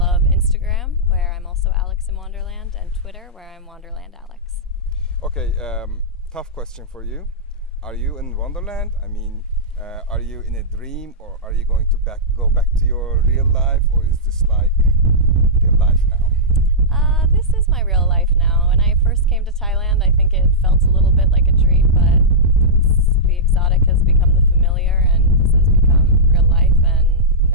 Instagram, where I'm also Alex in Wonderland, and Twitter, where I'm Wonderland Alex. Okay, tough question for you. Are you in Wonderland? I mean, are you in a dream, or are you going to go back to your real life, or is this like real life now? This is my real life now. When I first came to Thailand, I think it felt a little bit like a dream, but the exotic has become the familiar, and this has become real life, and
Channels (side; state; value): both; normal; correlation -0.13